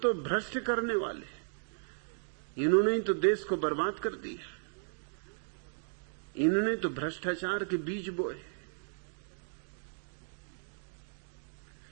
भ्रष्ट करने वाले। इन्होंने ही तो देश को बर्बाद कर दिया, इन्होंने तो भ्रष्टाचार के बीज बोए।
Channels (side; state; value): left; silent; digital silence